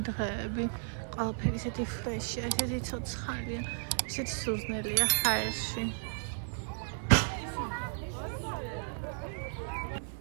დღეები. ყველაფერი ისეთი ფრეშია, ისეთი ცოცხალია, ისეთი სუზნელია ჰაერში.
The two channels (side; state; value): left; silent; digital silence